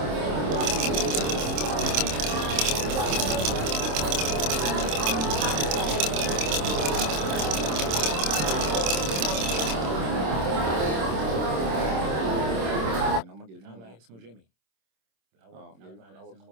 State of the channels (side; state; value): left; late; 26 ms